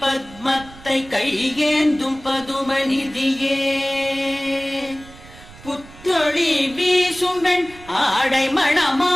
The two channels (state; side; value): noise; right; rumble, 20 dB below the sound